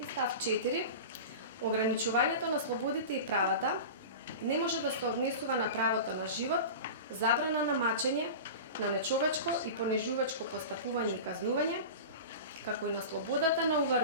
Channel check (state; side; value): inverted; both; correlation -0.31